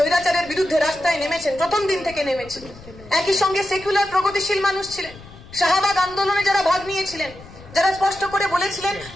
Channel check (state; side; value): noise; left; rumble, 19 dB below the sound